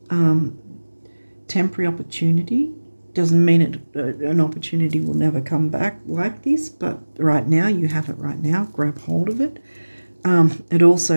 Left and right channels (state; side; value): inverted; both; correlation -1.00